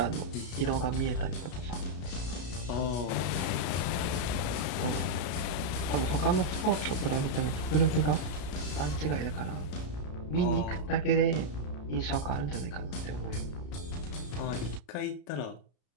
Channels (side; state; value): right; late; 33 ms